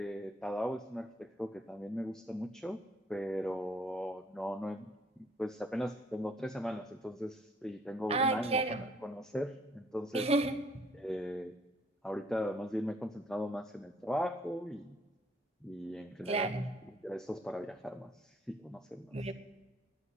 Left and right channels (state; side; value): normal; both; correlation 0.63